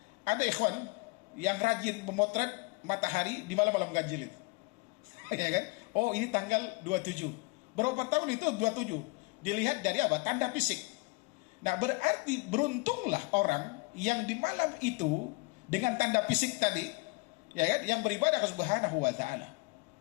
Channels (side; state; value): right; quieter; 27.6 dB